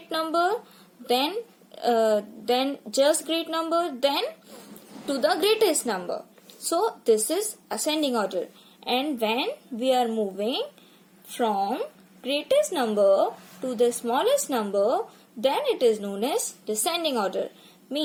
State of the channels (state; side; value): identical; both; correlation 1.00